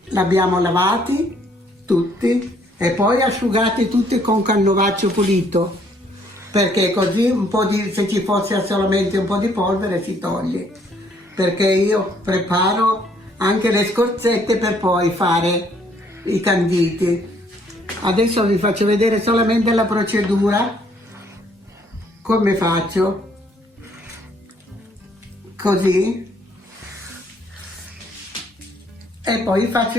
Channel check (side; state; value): both; normal; correlation 0.65